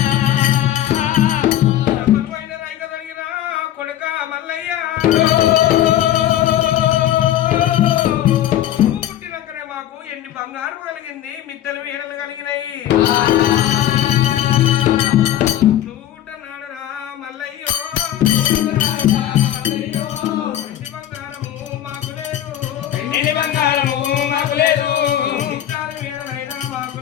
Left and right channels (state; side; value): quieter; right; 12.1 dB